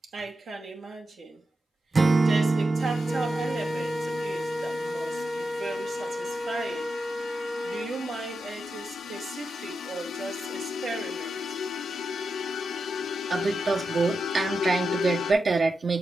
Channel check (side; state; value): both; normal; correlation 0.88